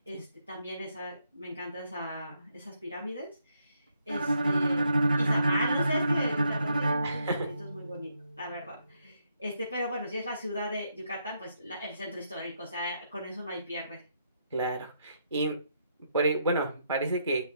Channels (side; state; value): both; inverted; correlation -0.77